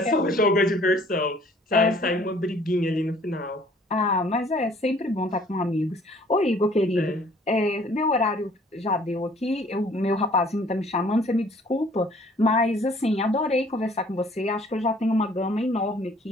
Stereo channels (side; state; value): both; normal; correlation 0.56